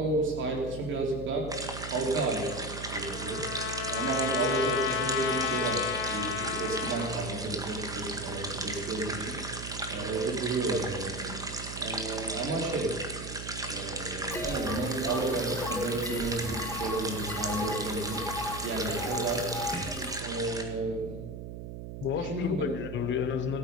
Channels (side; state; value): right; noise; hum, 8 dB below the sound